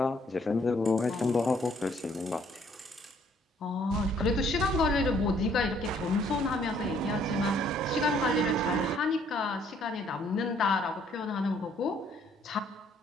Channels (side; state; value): both; normal; correlation 0.64